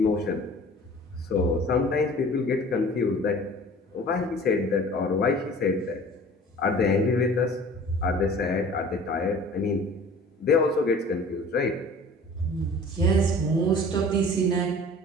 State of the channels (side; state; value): both; normal; correlation 0.45